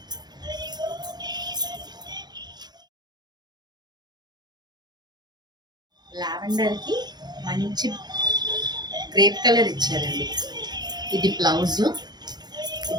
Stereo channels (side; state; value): left; late; 0.20 ms